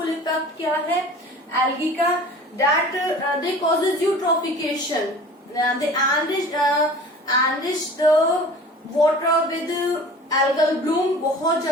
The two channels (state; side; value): normal; both; correlation 0.42